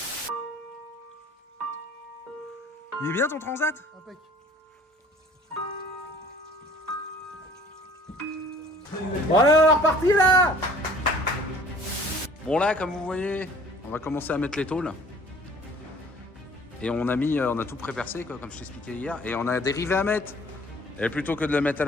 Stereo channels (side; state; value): both; normal; correlation 0.52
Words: Il est bien ton transat? Impec. Voilà, on est reparti là. Bon là, comme vous voyez, on va commencer à mettre les tôles. Et on a tout pré-percé, comme je t'expliquais hier. Et on a des rivets à mettre. Et plutôt que de le mettre à